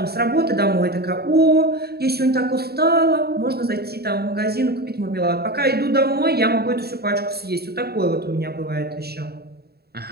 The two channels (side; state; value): left; late; 0.46 ms